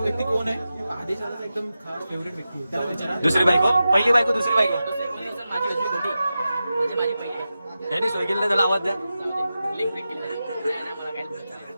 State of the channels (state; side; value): inverted; both; correlation -0.92